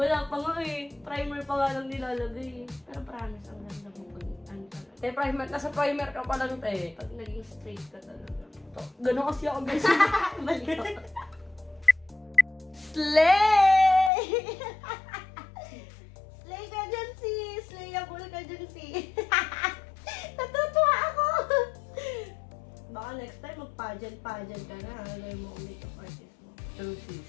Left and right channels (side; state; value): right; drops out; at 14.1 s